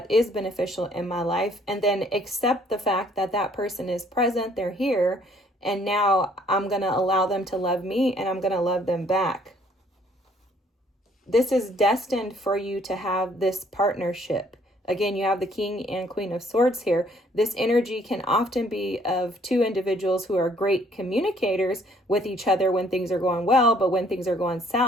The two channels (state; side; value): normal; both; correlation 0.62